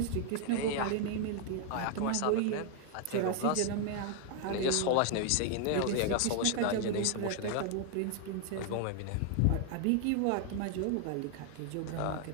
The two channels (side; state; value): both; different; correlation 0.00